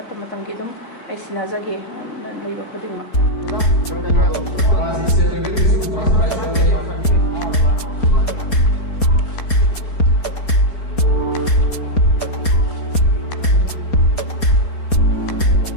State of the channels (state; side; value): late; right; 4.2 ms